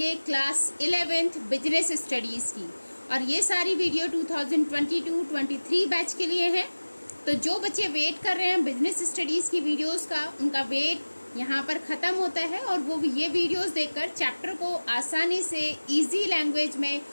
क्लास 11th बिजनेस स्टडीज़ की, और ये सारी वीडियो 2022-23 बैच के लिए है। तो जो बच्चे वेट कर रहे हैं बिजनेस स्टडीज़ की वीडियोस का, उनका वेट यहाँ पर ख़त्म होता है और वो ये वीडियोस देखकर चैप्टर को आसानी से ईजी लैंग्वेज में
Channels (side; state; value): both; inverted; correlation -1.00